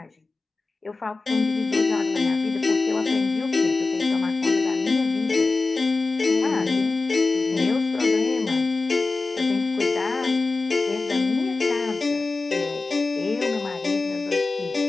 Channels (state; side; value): quieter; right; 3.6 dB